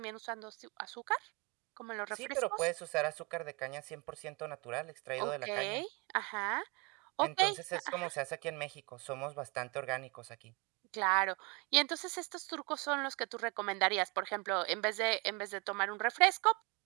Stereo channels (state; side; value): quieter; left; 27.9 dB